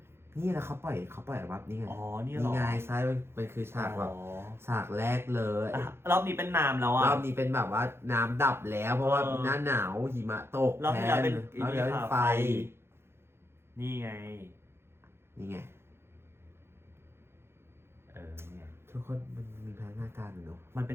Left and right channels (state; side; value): late; left; 0.12 ms